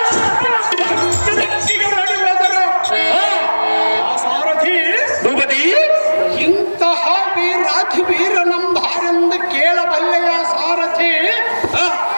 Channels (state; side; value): inverted; both; correlation -1.00